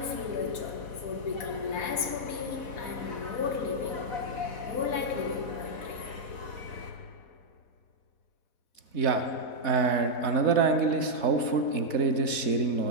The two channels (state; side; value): late; right; 4.2 ms